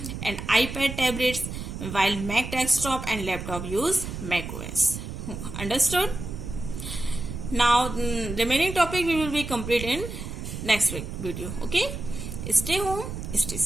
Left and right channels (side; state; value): right; noise; rumble, 7 dB below the sound